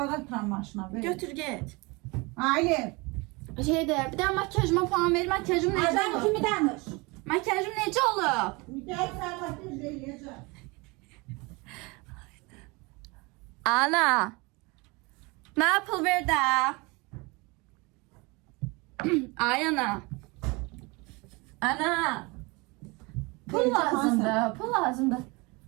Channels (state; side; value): quieter; left; 26.4 dB